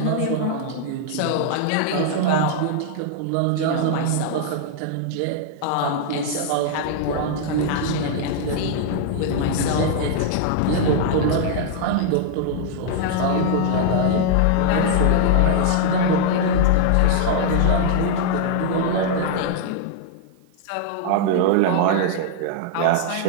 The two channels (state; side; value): different; both; correlation 0.00